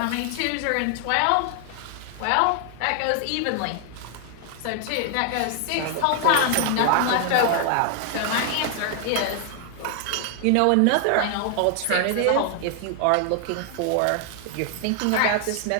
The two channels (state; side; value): different; both; correlation 0.00